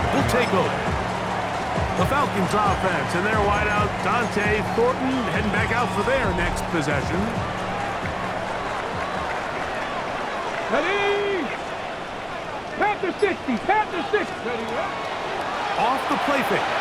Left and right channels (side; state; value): both; identical; correlation 1.00